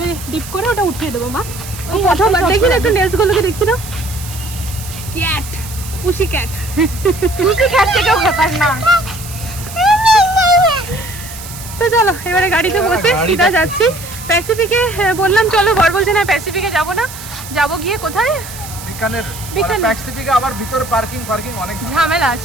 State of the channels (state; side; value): noise; right; hiss, 13 dB below the sound